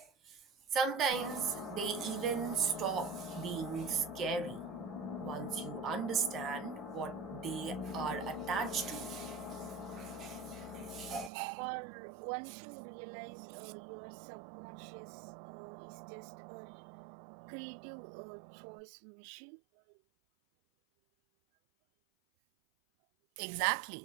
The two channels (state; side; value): drops out; left; at 11.3 s